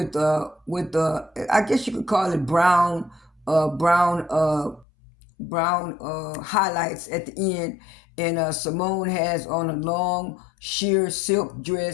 I guess you could call it brown highlights at the end. And Simone has on a long sheer silk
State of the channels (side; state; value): right; drops out; at 4.9 s